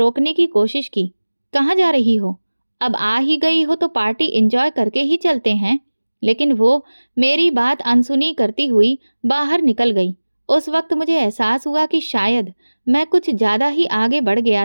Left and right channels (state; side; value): inverted; both; correlation -1.00